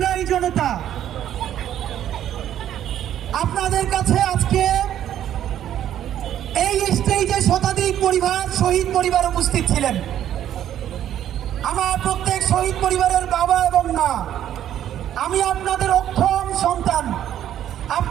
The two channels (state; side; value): quieter; left; 11.1 dB